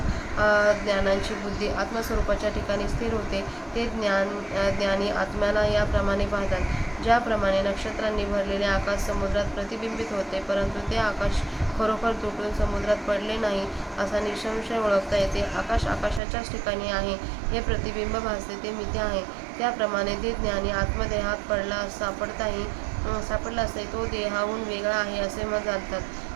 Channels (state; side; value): drops out; left; at 16.2 s